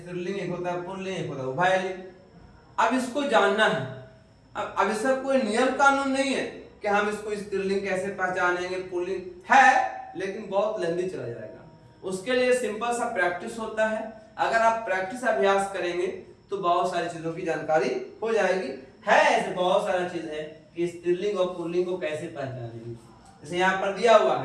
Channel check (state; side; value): identical; both; correlation 1.00